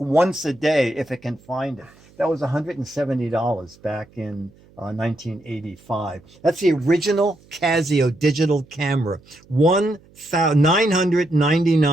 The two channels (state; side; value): noise; right; hum, 28 dB below the sound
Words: once a day if it can find it. That was $170 back in 1985. That's the original Casio digital camera.